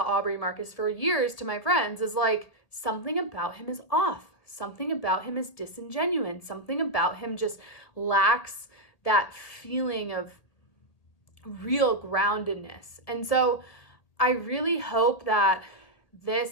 Aubrey Marcus for years to my friends, is like, something about him is off. Something about him is disingenuous. Something about him just lacks that feeling of real groundedness. And so I really hope that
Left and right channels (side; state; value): right; late; 1.8 ms